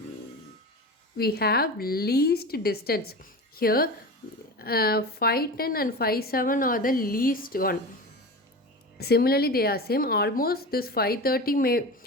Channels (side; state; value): both; normal; correlation 0.29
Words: we have least distance. Here 510 and 57 are the least one. Similarly they are same, almost this 530 may,